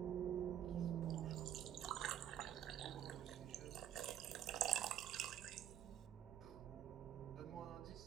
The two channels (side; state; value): left; quieter; 10.4 dB